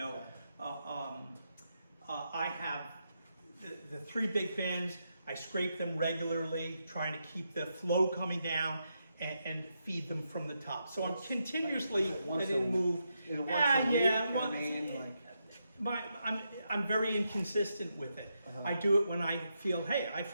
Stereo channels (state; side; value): inverted; both; correlation -0.83